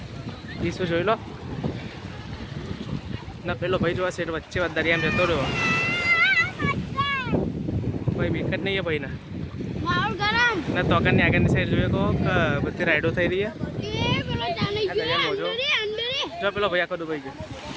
ઈસુ જોઈ લો ના પેલો ભાઈ જોવા સેટ વચ્ચે દરિયામાં જતો રહ્યો ભાઈ વિકેટ નહીં है भाई ना ना तो આગળની સાઈડ જોઈએ કહો કે બધી રાઈડો થઈ રહી છે જો પેલો ભાઈ આખો ડૂબાઈ ગયો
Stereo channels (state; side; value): identical; both; correlation 1.00